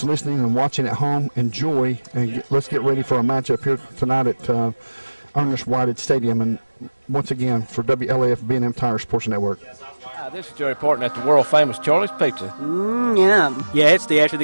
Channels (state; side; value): inverted; both; correlation -1.00